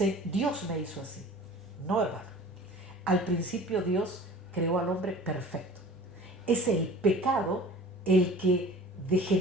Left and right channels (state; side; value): normal; both; correlation 0.43